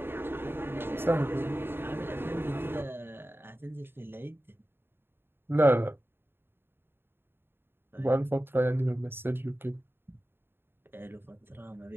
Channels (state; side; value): late; left; 0.11 ms